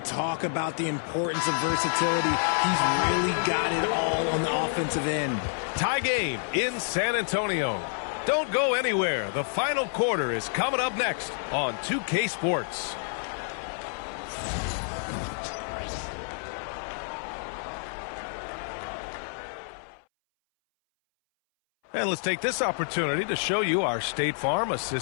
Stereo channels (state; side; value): silent; right; 59 dB below the other